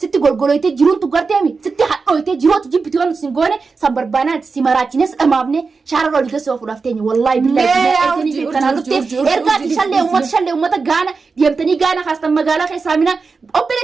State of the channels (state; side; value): quieter; left; 4.6 dB